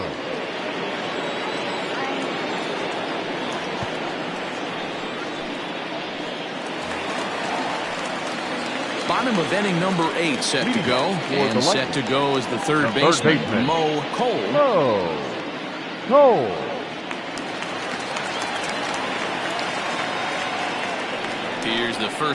Bottom of inning number 8 set to go, and set to go is the third baseman, Mo Cole. Cole. Here's the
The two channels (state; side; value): identical; both; correlation 1.00